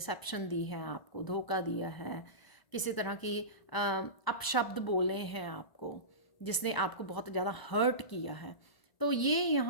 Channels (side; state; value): right; late; 1.0 ms